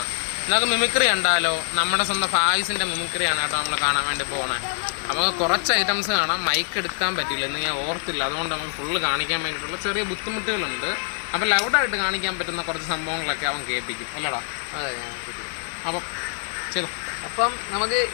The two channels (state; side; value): silent; right; 62 dB below the other